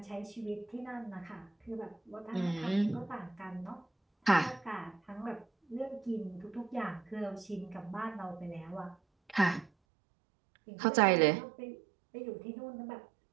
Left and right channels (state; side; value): drops out; left; at 9.7 s